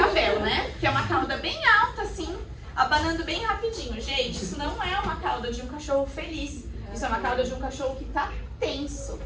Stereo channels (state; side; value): identical; both; correlation 1.00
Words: né? Que é uma cauda bem alta, assim, abanando bem rapidinho. Gente, isso não é uma cauda de um cachorro feliz. Isso é uma cauda de um cachorro que tá tenso.